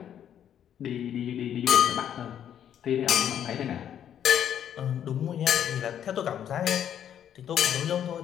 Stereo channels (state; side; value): quieter; right; 9.7 dB